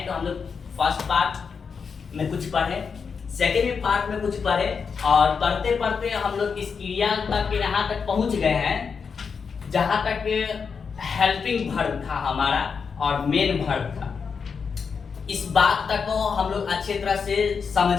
तो हम लोग फर्स्ट पार्ट में कुछ पढ़े, सेकेंड पार्ट में कुछ पढ़े, और पढ़ते पढ़ते हम लोग इस क्रिया तक यहाँ तक पहुँच गए हैं जहाँ तक हेल्पिंग वर्ब था हमारा और मेन वर्ब था। इस बात तक को हम लोग अच्छी तरह से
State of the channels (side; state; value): right; quieter; 5.8 dB